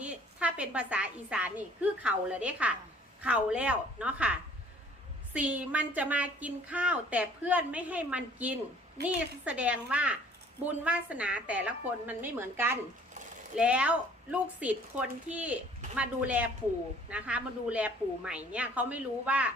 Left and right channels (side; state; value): both; normal; correlation 0.55